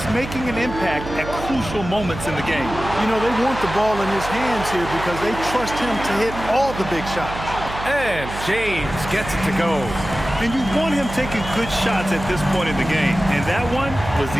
making an impact at crucial moments in the game. You know, they want the ball in his hands here because they trust him to hit all the big shots. And James gets it to go. And you want him taking good shots at this point in the game, and that one was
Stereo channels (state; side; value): noise; right; hum, 9 dB below the sound